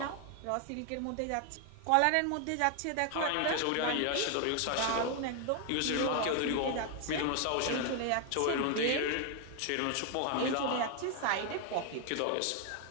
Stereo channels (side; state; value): both; different; correlation 0.00